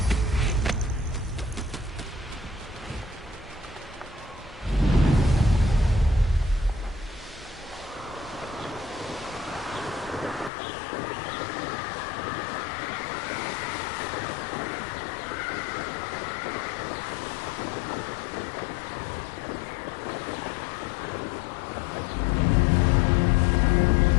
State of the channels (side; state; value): right; drops out; at 10.5 s